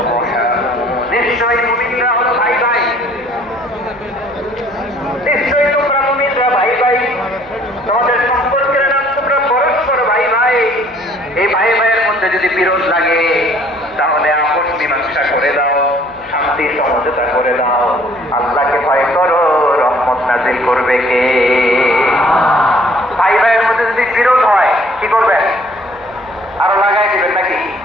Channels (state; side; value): noise; right; hum, 25 dB below the sound